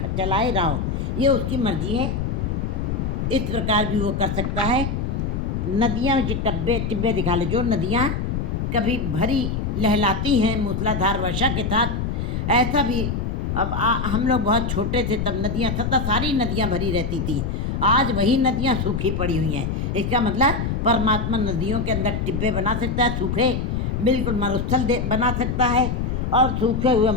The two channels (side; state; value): left; noise; rumble, 1 dB below the sound